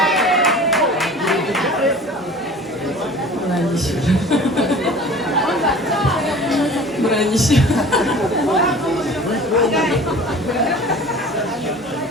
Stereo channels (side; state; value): both; normal; correlation 0.42